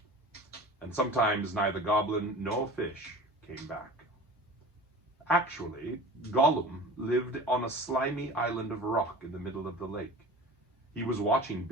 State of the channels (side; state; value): both; normal; correlation 0.38